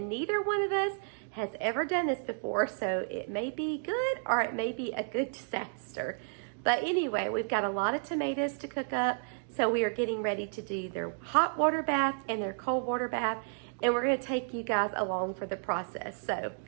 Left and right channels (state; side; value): silent; left; digital silence